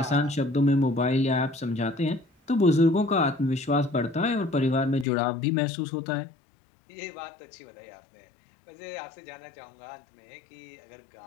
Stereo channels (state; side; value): drops out; right; at 5.1 s